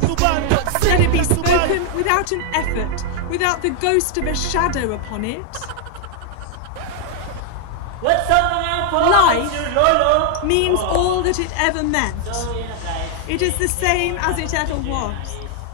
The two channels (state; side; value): different; both; correlation 0.00